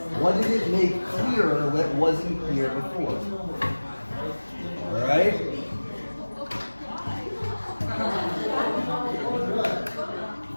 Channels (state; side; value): inverted; both; correlation -1.00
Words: What did it make clearer that wasn't clear before? All right?